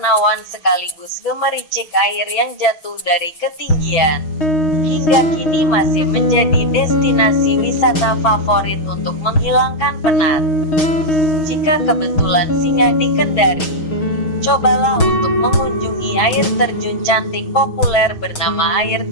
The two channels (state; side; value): late; right; 6.4 ms